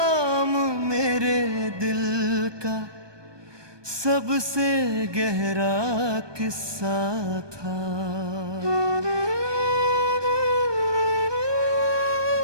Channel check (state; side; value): late; left; 1.2 ms